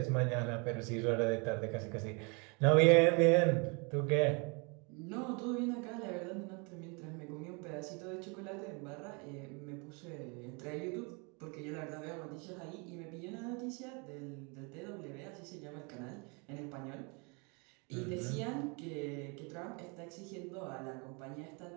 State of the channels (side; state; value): left; quieter; 32.1 dB